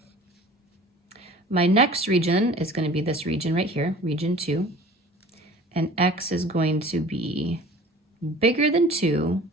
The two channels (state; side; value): normal; both; correlation 0.45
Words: My next region is going to be this region right here, region 2. And x is going to be bigger than 2,